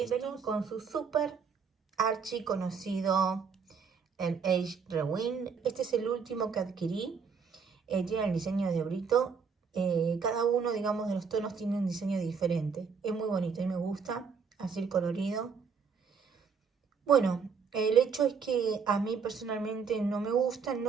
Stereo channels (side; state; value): left; quieter; 5.8 dB